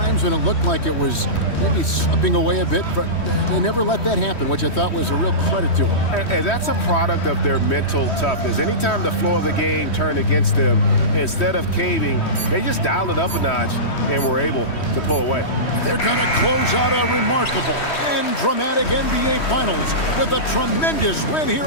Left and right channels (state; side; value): late; right; 3.1 ms